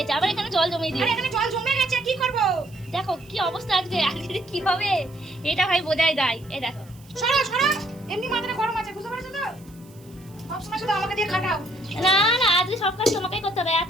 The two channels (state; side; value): noise; right; hiss, 26 dB below the sound